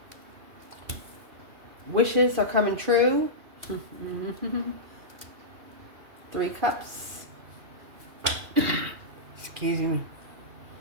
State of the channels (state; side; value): late; left; 2.4 ms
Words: Wishes are coming true. 3 Cups. Excuse me.